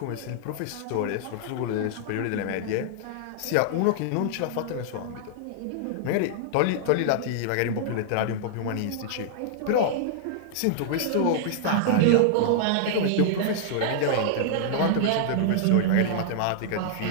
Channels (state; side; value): different; both; correlation -0.01